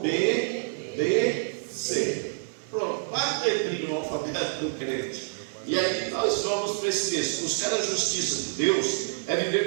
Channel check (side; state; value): left; silent; 60 dB below the other